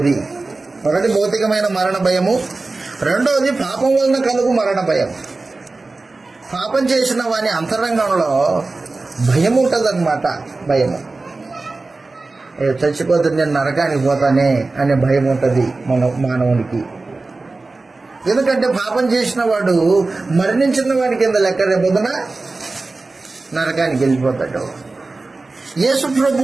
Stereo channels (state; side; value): quieter; left; 3.5 dB